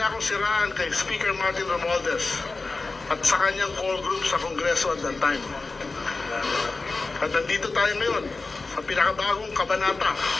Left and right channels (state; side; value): quieter; right; 3.7 dB